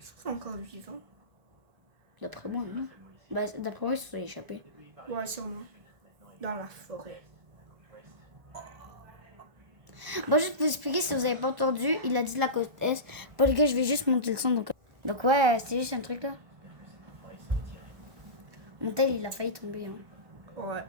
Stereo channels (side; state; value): left; late; 1.4 ms